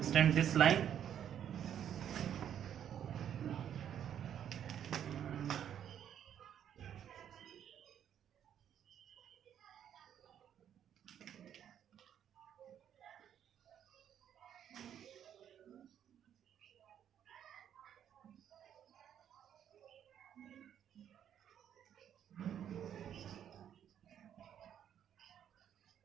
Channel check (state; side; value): quieter; left; 9.6 dB